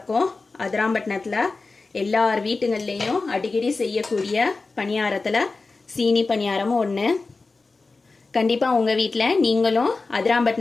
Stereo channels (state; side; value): quieter; right; 3.8 dB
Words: அதிராம்பட்டினத்தில் எல்லார் வீட்டுங்கள்லேயும் அடிக்கடி செய்யக்கூடிய பணியாரத்தில் சீனி பணியாரமும் ஒன்று. கண்டிப்பாக உங்கள் வீட்டில் நீங்களும்